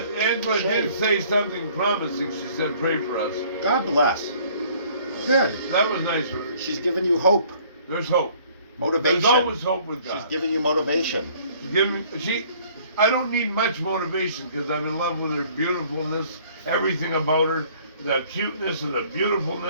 did Shave. say something promising. She said, "Pray for us." God bless. Good. That was nice of her. She's giving you hope, There's hope. motivation. There's always hope with She's God. giving you motivation. I don't need much motivation because I'm in love with her beautifulness, everything about her, the cuteness and the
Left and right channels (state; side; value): inverted; both; correlation -0.57